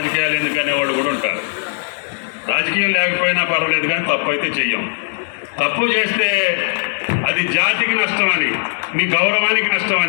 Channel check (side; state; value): right; silent; 64 dB below the other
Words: ఎందుకనే వాళ్ళు కూడా ఉంటారు. రాజకీయం లేకపోయినా పర్వాలేదు కానీ తప్పు అయితే చెయ్యం. తప్పు చేస్తే అది జాతికి నష్టమని, మీ గౌరవానికి